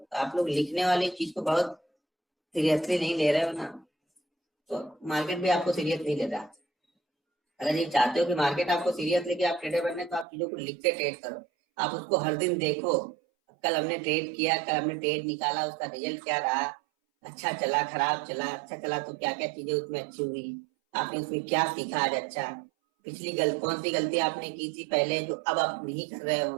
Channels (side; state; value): left; drops out; at 10.2 s